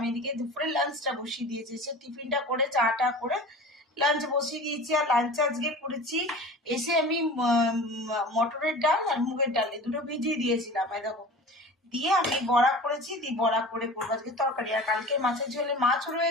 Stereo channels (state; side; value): normal; both; correlation 0.37